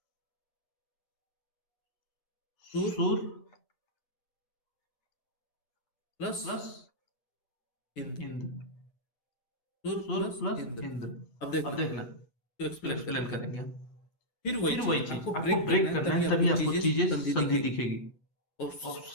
सुर प्लस इंद्र, सुर प्लस इंद्र। अब देखना, इसको एक्सप्लेन करेंगे हम। फिर वही चीज आपको ब्रेक करना है, तभी आपको चीजें संधि दिखेगी। और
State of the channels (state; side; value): late; right; 8.2 ms